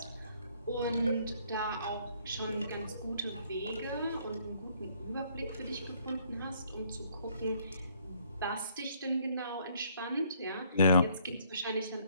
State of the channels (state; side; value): inverted; both; correlation -0.65